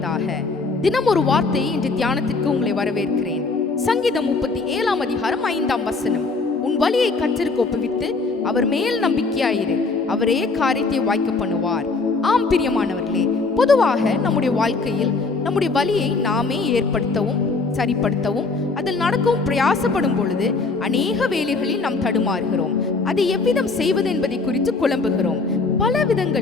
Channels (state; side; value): quieter; right; 3.9 dB